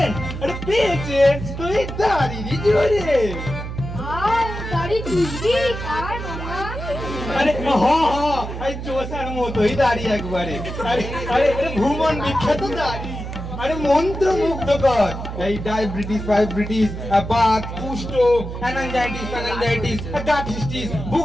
আরে পেয়েছেন তুই দাড়িরই জোরে। আর দাড়ি চুষবি আর মামা? আরে এই চোষার মতোই দাড়ি একবারে। আরে আরে ভুবন বিখ্যাত দাড়ি। আরে মন্ত্র মুগ্ধকর। এই ডায়াবেটিস, ফাইব্রিটিস, বাত, কুষ্ঠ, অ্যানাঞ্জাইটিস, গাঠিস্টিস,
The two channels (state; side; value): noise; right; hum, 7 dB below the sound